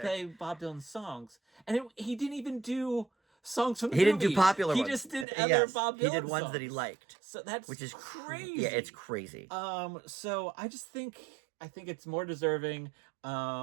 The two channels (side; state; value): left; drops out; at 5.2 s